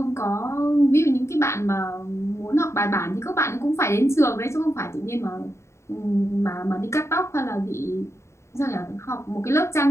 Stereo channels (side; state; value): right; late; 0.14 ms